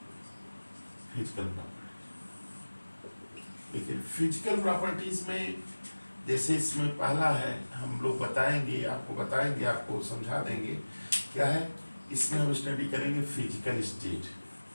फिजिकल प्रॉपर्टी, लेकिन फिजिकल प्रॉपर्टीज में जैसे इसमें पहला है, हम लोग बताएंगे, आपको समझा देंगे क्या है। इसमें हम स्टडी करेंगे physical state,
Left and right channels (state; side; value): inverted; both; correlation -1.00